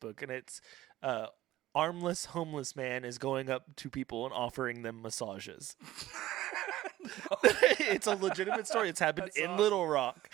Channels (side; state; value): left; quieter; 14.9 dB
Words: And it's armless homeless man is going up to people and offering them massages. It's a legitimate story. It's happened That's in awesome. Little Rock.